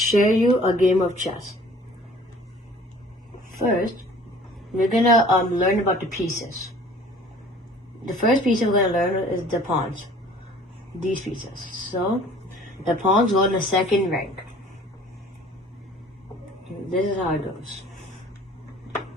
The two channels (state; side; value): normal; both; correlation 0.50